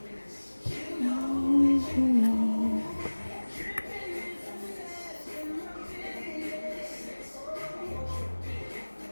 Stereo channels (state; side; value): inverted; both; correlation -1.00